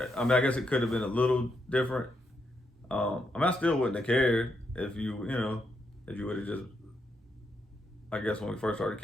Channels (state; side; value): normal; both; correlation 0.80